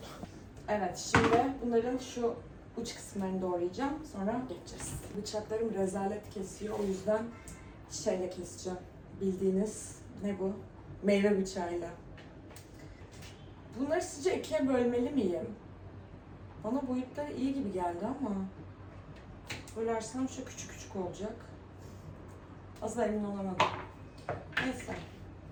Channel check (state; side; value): identical; both; correlation 1.00